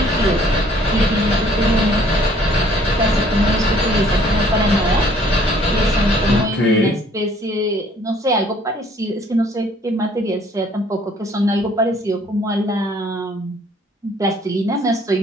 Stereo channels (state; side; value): normal; both; correlation 0.59